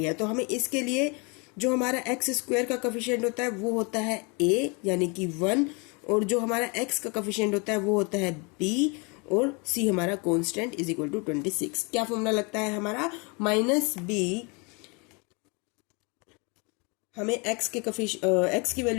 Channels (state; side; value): quieter; right; 31.0 dB